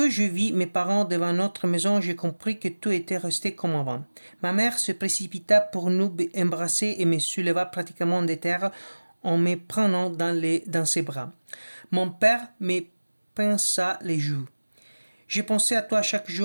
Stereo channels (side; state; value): both; inverted; correlation -1.00